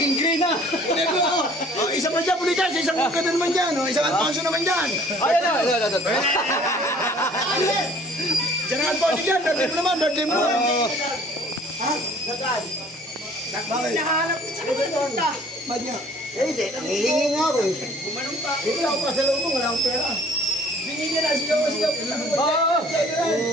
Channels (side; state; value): both; normal; correlation 0.53